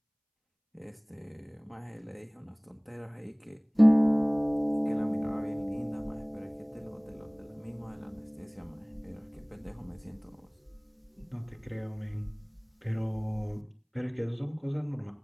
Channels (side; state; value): both; identical; correlation 1.00